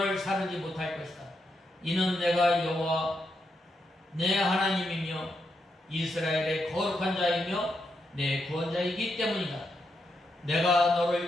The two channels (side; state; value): both; normal; correlation 0.83